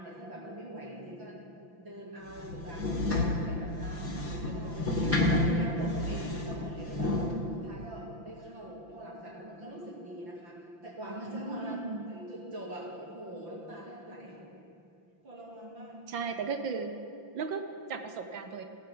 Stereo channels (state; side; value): late; left; 5.9 ms